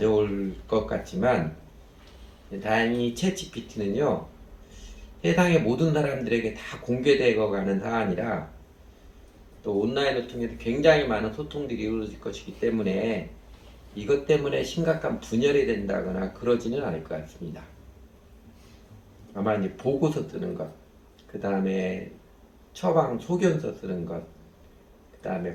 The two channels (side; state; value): both; identical; correlation 1.00